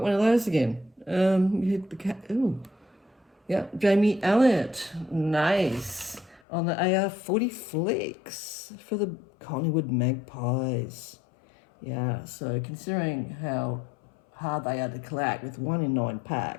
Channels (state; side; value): drops out; right; at 6.4 s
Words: one of those again. Yeah, Jamie Elliott. Nice. On the AR40 Flex for the Collingwood Magpies. Yeah, so considering how hard they are to collect with 1 in 9